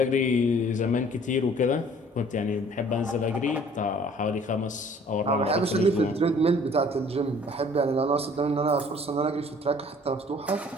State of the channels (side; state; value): both; normal; correlation 0.54